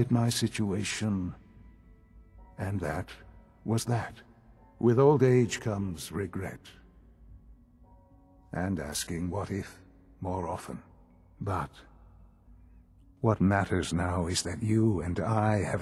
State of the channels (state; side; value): identical; both; correlation 1.00